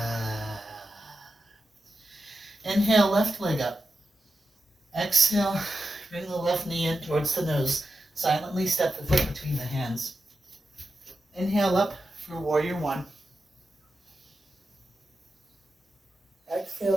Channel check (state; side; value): normal; both; correlation 0.90